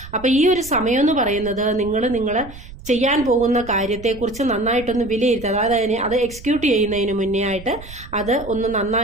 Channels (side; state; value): right; noise; rumble, 16 dB below the sound